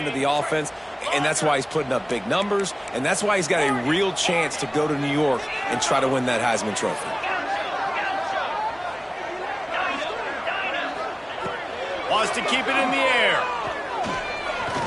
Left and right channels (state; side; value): identical; both; correlation 1.00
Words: of the offense, and that's why he's putting up big numbers, and that's why he's got a real chance to go to New York and try to win that Heisman Trophy. Wants to keep it in the air.